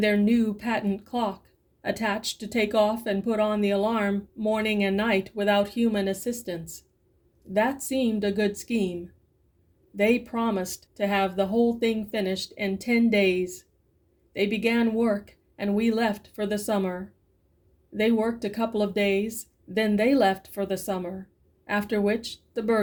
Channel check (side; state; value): both; identical; correlation 1.00